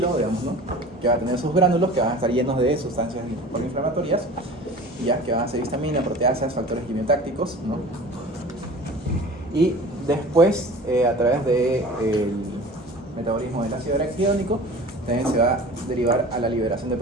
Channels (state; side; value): normal; both; correlation 0.40